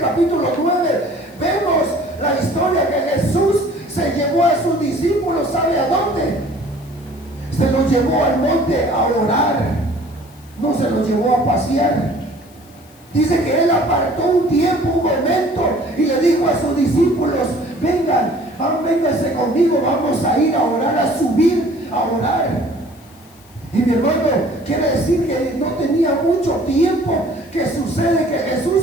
9, vemos la historia que Jesús se llevó a sus discípulos. ¿Sabe a dónde? Se los llevó al monte a orar, no se los llevó a pasear. Dice que Él apartó un tiempo, un momento, y le dijo a sus discípulos: vénganse conmigo, vamos a ir a orar, a subir a orar. Y mi hermano, quiere decir que no tenía mucho tiempo que sucede que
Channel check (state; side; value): noise; left; hiss, 27 dB below the sound